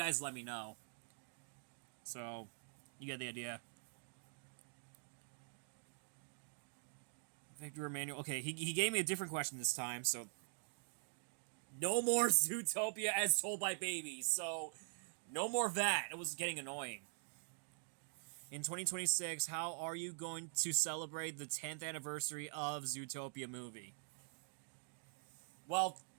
let me know. So, you get the idea. Victor Emmanuel. Okay, he gave me a different question this time, so... No more Zootopia as told by babies, so... No more of that. It was getting annoying. In 2026, how are you going to celebrate the 10th anniversary of Zootopia movie? Well...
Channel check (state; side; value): silent; left; digital silence